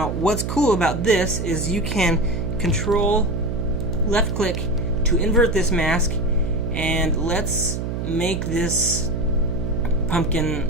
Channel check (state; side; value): noise; right; hum, 3 dB below the sound